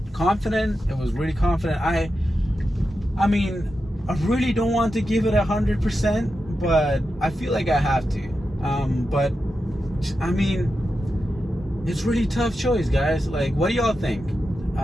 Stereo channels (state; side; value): normal; both; correlation 0.89